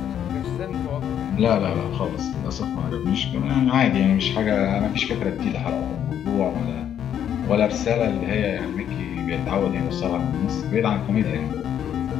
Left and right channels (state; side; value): quieter; right; 9.6 dB